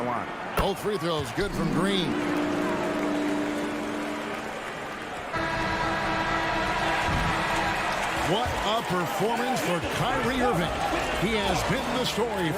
line. Both free throws good from Green. What a performance for Kyrie Irving. He has been the story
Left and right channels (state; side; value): identical; both; correlation 1.00